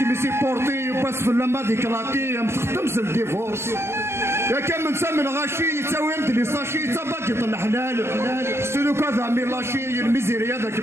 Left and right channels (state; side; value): late; left; 0.12 ms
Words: ميسي بورتي وباس في اللمبه ديكلاتي متخدمش الديفورس يا كان من سامي الغاشي يتساوي لي ساشي تباكي الحلال سلو كذا ميلاشي الميزيريا داك